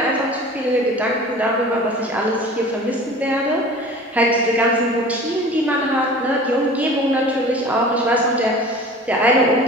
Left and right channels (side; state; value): both; normal; correlation 0.41